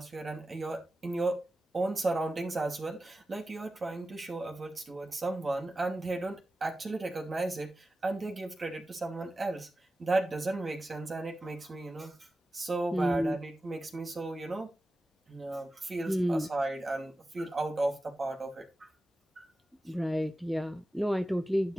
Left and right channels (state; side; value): normal; both; correlation 0.94